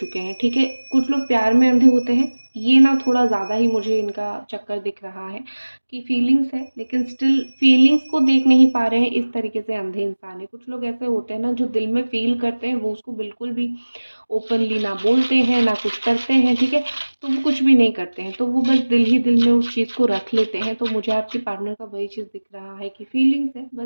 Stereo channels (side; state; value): both; inverted; correlation -1.00